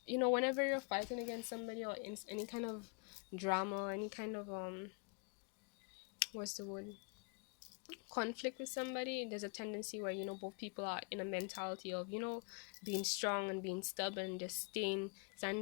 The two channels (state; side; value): quieter; right; 35.5 dB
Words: whenever you're fighting against somebody, or in any kind of drama, any kind of what's the word, conflict with somebody, there's a tendency where both people are in a mentality of being strong and being stubborn and just